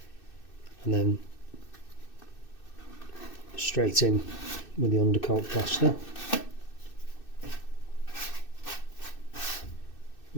and then straight in with the undercoat plaster.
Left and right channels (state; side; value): late; right; 2.6 ms